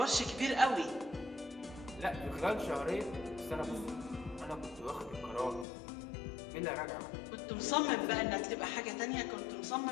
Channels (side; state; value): right; drops out; at 5.7 s